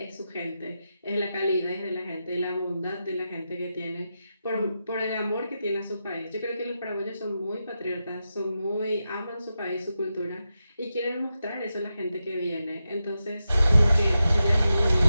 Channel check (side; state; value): both; inverted; correlation -0.89